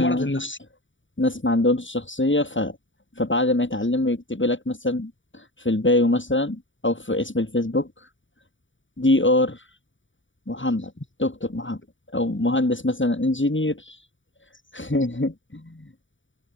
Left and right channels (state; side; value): late; right; 0.56 ms